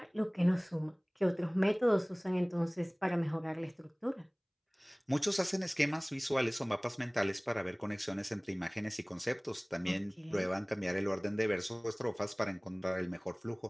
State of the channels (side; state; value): both; identical; correlation 1.00